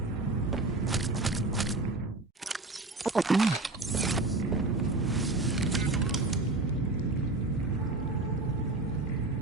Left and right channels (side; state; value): left; quieter; 3.1 dB